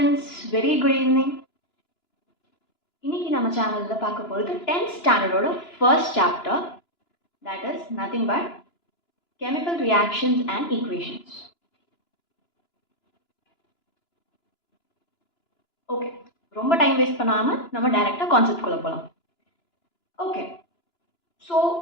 very good evening. இன்னைக்கு நம்ம சேனல்ல பார்க்க போறது 10th ஸ்டாண்டர்டோட first chapter, that is nothing but chemical reactions and equations. Okay, ரொம்ப டைம் வேஸ்ட் பண்ணாம நம்ம டைரக்டா கான்செப்ட் குள்ள போலாம். Okay. ஸோ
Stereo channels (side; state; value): right; late; 2.9 ms